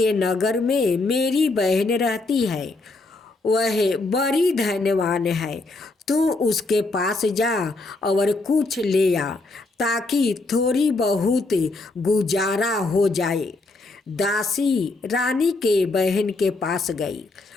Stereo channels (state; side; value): quieter; right; 3.2 dB